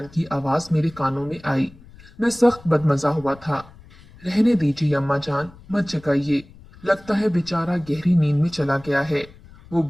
की आवाज मेरे कानों में आई। मैं सख्त बदमजा हुआ था। रहने दीजिए अम्मा जान, मत जगाइए। लगता है बेचारा गहरी नींद में चला गया है। वो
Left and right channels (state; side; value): noise; left; rumble, 22 dB below the sound